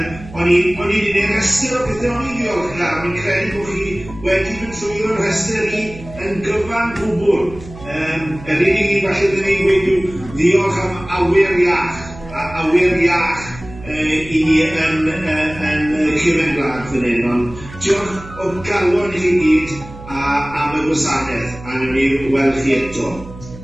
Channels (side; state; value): right; noise; hum, 16 dB below the sound